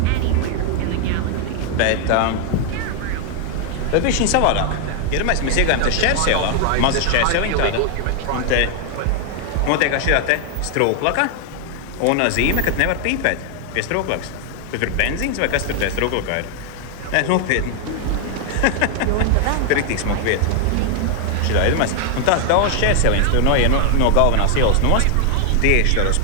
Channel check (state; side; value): different; both; correlation 0.00